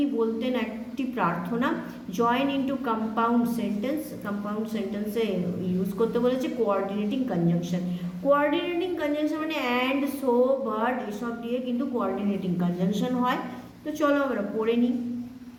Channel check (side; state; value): both; identical; correlation 1.00